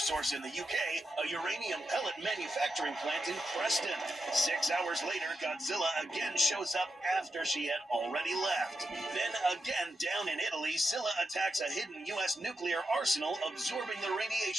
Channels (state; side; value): normal; both; correlation 0.87